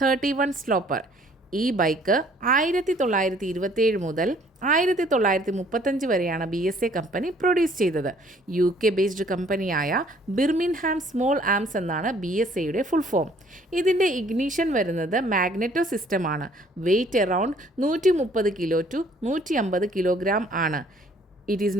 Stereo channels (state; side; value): normal; both; correlation 0.59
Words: sloper. ഈ ബൈക്ക് 1927 മുതൽ 1935 വരെയാണ് BSA കമ്പനി പ്രൊഡ്യൂസ് ചെയ്തത്. UK ബേസ്ഡ് കമ്പനിയായ ബിർമിൻഹാം സ്മോൾ ആംസ് എന്നാണ് BSAയുടെ ഫുൾ ഫോം. ഇതിൻ്റെ ഇഗ്നീഷൻ വരുന്നത് മാഗ്നറ്റോ സിസ്റ്റമാണ്. Weight around 130 kilo to 150 kilogram ആണ്. It is